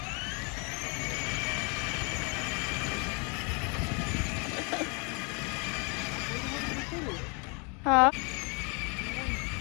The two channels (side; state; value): right; quieter; 33.6 dB